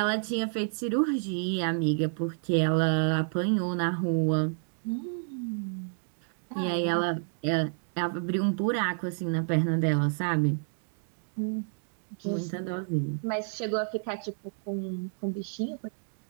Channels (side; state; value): left; silent; digital silence